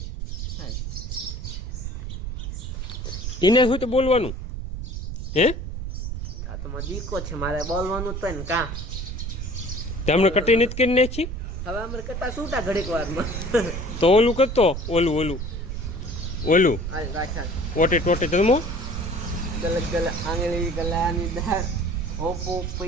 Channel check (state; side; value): noise; right; rumble, 5 dB below the sound